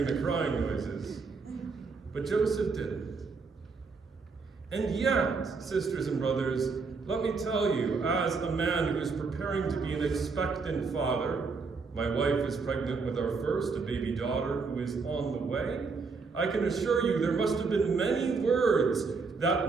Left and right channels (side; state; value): left; quieter; 4.6 dB